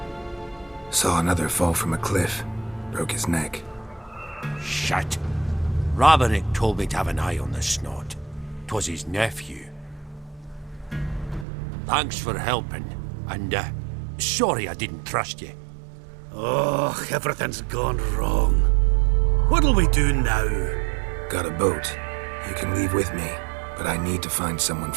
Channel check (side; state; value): left; drops out; at 11.5 s